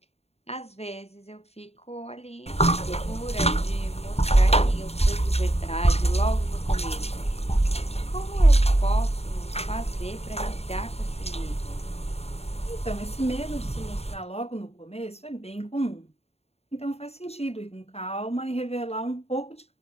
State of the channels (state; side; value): late; right; 0.30 ms